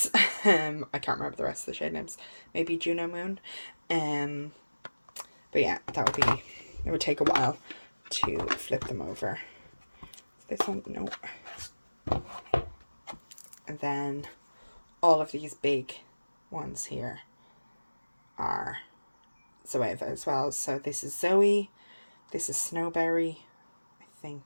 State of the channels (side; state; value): both; inverted; correlation -1.00